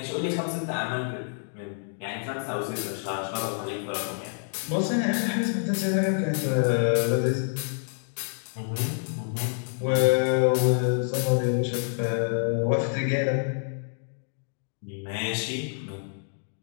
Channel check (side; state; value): right; silent; digital silence